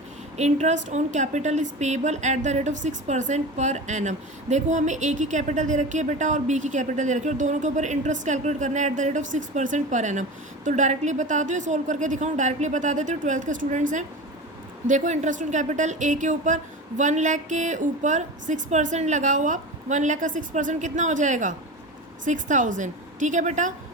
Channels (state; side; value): normal; both; correlation 0.29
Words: Interest on capital is payable at the rate of 6% per annum. देखो हमें A की कैपिटल दे रखी है बेटा और B की कैपिटल दे रखी है और दोनों के ऊपर इंटरेस्ट कैलकुलेट करना है at the rate of 6% per annum. तो डायरेक्टली बता दो, सोल्व करके दिखाऊँ? डायरेक्टली बता देते हो, 12th के स्टूडेंट्स हैं। देखो इंटरेस्ट ऑन कैपिटल ए के ऊपर 1 लाख के ऊपर 6% लगाओ आप। 1 लाख का 6% कितना हो जाएगा? 6,000। ठीक है बेटा।